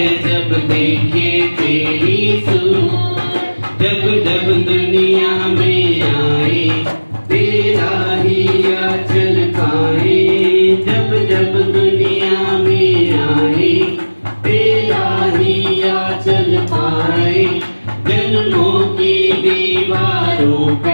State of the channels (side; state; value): both; inverted; correlation -1.00